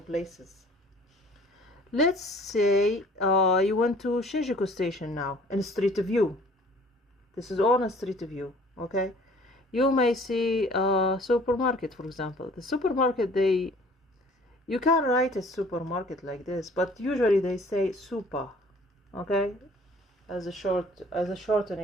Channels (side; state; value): both; normal; correlation 0.53